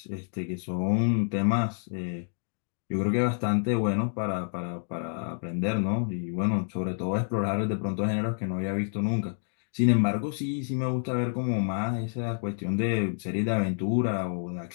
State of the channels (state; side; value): silent; right; digital silence